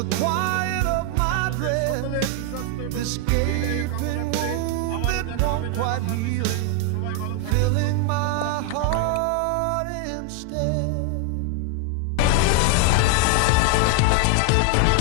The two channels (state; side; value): different; both; correlation 0.00